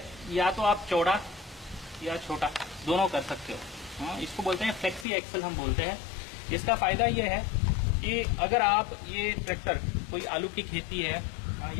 या तो आप चौड़ा या छोटा दोनों कर सकते हो। हाँ, इसको बोलते हैं फ्लेक्सी एक्सल हम बोलते हैं। इसका फायदा ये है कि अगर आप ये ट्रैक्टर कोई आलू की खेती है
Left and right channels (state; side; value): drops out; right; at 5.1 s